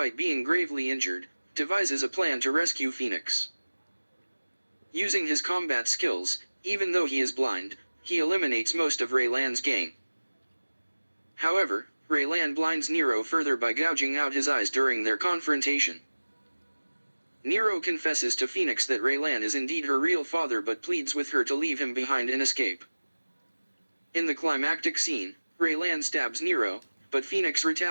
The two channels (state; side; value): inverted; both; correlation -1.00